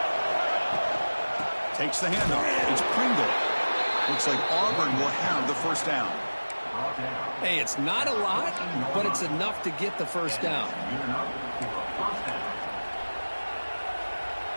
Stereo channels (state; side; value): inverted; both; correlation -1.00